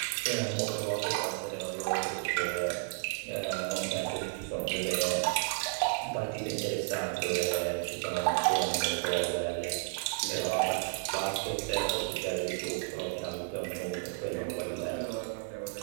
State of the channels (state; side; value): silent; left; 56 dB below the other